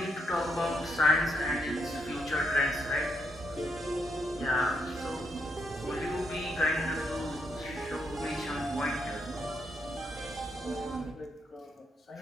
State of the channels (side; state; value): both; normal; correlation 0.77